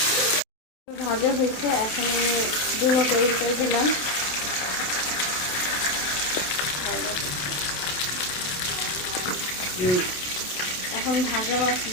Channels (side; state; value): right; late; 27 ms